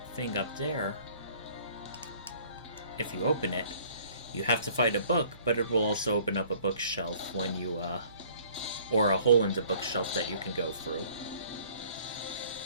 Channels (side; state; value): both; inverted; correlation -0.55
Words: thing up there, if you open it, you have to fight a book, but it will also open up a bookshelf when you, or a hole in the bookshelf that you can go through.